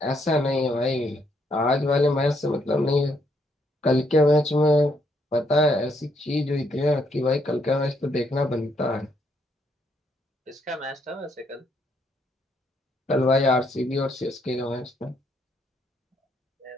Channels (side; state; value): both; normal; correlation 0.73